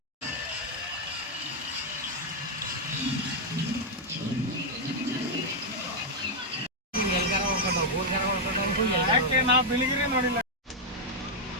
ನಾವು ಬೆಳಿಗ್ಗೆ ನೋಡಿಲ್ಲ.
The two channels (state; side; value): normal; both; correlation -0.02